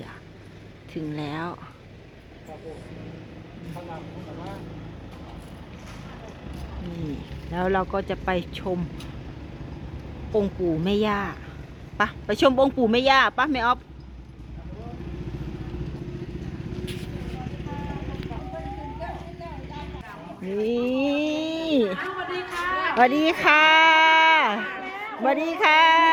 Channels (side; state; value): both; identical; correlation 1.00